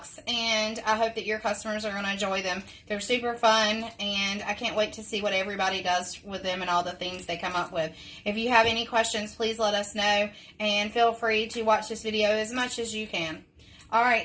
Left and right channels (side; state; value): both; identical; correlation 1.00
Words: and I hope that your customers are going to enjoy them. They're super fun, and I can't wait to see what everybody does with them and all the things they come up with. If you have any questions, please let us know, and feel free to watch this video as much as you can. All